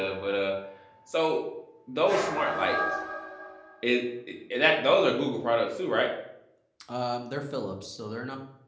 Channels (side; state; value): both; identical; correlation 1.00